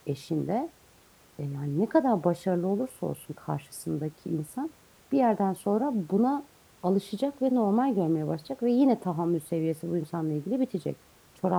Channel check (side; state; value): both; identical; correlation 1.00